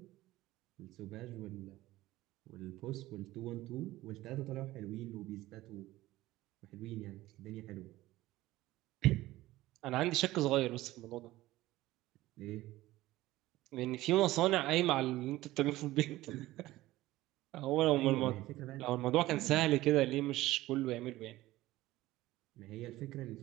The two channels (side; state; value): left; quieter; 17.0 dB